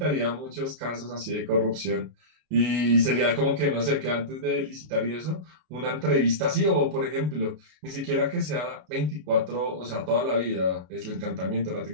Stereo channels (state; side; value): late; left; 33 ms